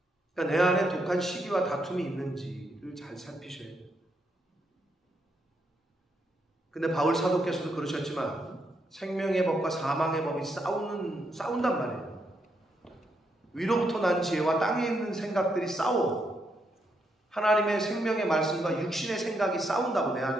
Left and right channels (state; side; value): normal; both; correlation 0.79